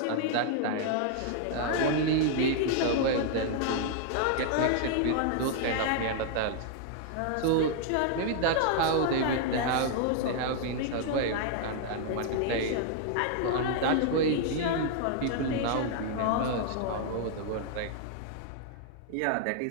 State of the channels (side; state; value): both; different; correlation -0.01